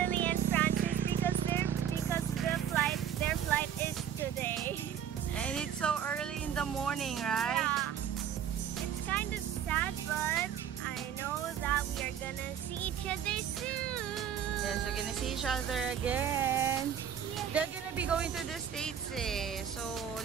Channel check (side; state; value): left; quieter; 8.9 dB